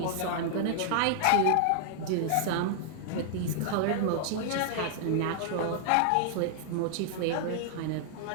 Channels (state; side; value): different; both; correlation -0.01